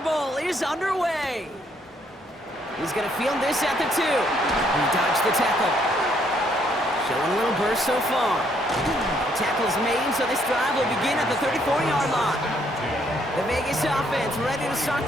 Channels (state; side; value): normal; both; correlation 0.69